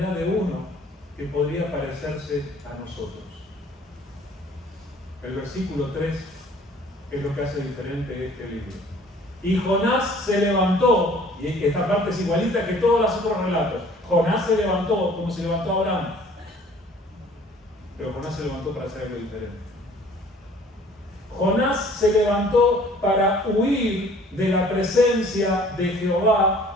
de uno que podría parecerse a nosotros. El versículo 3 es lo que hace diferente este libro. Y Jonás se levantó, y esta parte es igualita que todos los otros relatos. Jonás se levantó como se levantó Abraham, pero Jonás se levantó para hacer algo diferente. Jonás se levantó para huir de la presencia de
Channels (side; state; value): both; normal; correlation 0.53